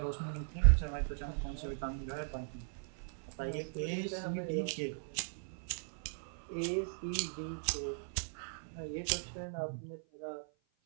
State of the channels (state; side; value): silent; left; 52 dB below the other